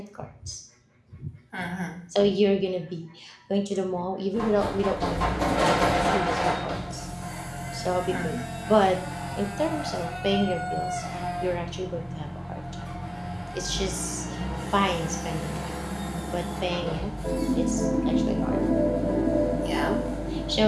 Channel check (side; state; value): both; identical; correlation 1.00